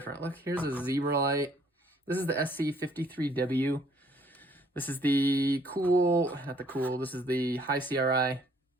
Look, here's a zebra light. This is the SC53W. This is the this is the high CRI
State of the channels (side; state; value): both; normal; correlation 0.62